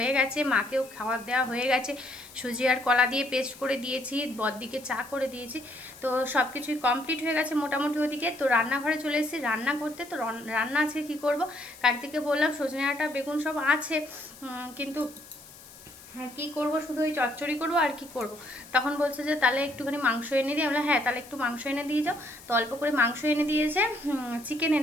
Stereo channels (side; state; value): left; noise; hiss, 20 dB below the sound